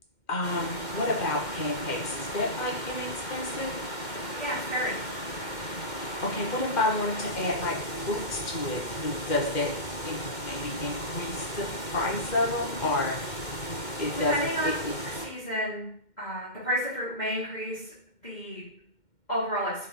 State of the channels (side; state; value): right; late; 2.1 ms